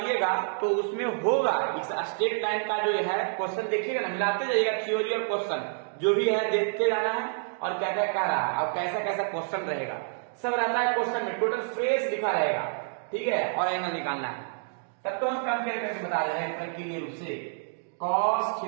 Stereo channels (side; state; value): left; silent; digital silence